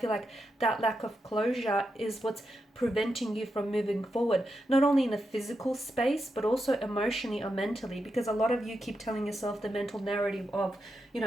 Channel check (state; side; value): normal; both; correlation 0.86